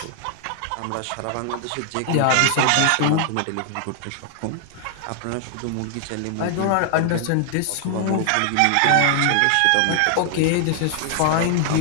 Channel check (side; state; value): both; different; correlation 0.00